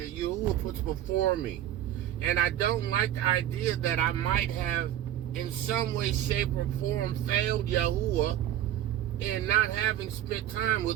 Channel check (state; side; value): quieter; left; 11.9 dB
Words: Yahudah puts before me. And I don't like the idea that I might have, in some way, shape, or form, failed Yahudah in not having spent time